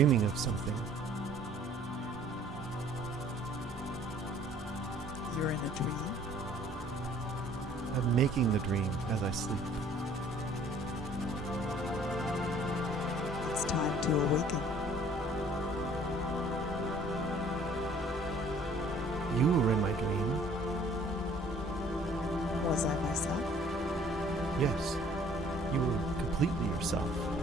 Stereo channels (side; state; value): both; normal; correlation 0.55